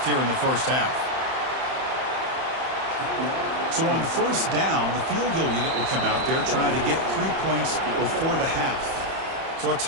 here in the first half. So on first down, the field goal unit will come out there trying to get 3 points before the half. So a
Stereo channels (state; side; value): late; left; 31 ms